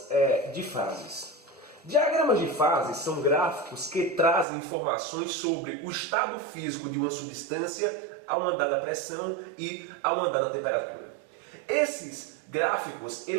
de fases. Diagramas de fases são gráficos que trazem informações sobre o estado físico de uma substância a uma dada pressão e a uma dada temperatura. Esses gráficos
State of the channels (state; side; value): drops out; left; at 4.5 s